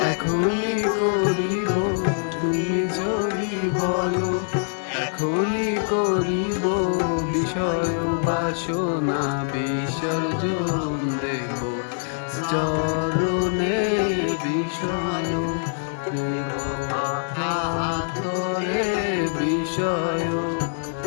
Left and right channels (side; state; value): right; silent; digital silence